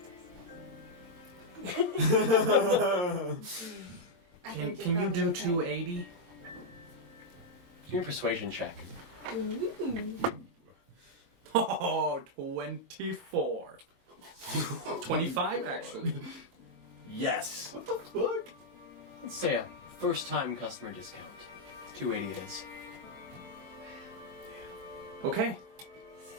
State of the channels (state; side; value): late; left; 22 ms